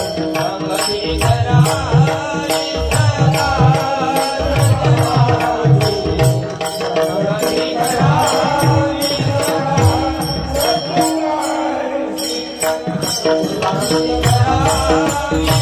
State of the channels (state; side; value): identical; both; correlation 1.00